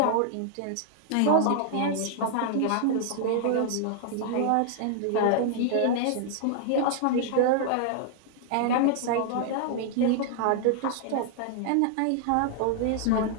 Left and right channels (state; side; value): different; both; correlation 0.00